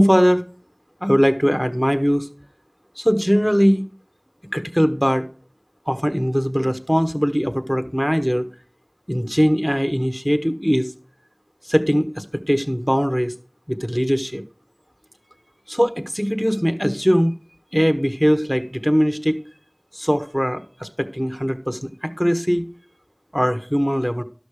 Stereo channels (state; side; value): identical; both; correlation 1.00